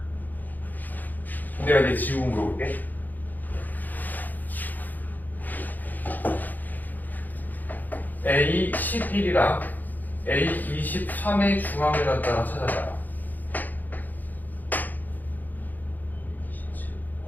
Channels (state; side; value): late; right; 0.084 ms